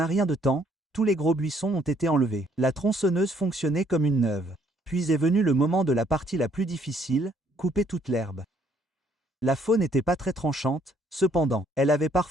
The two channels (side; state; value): both; normal; correlation 0.66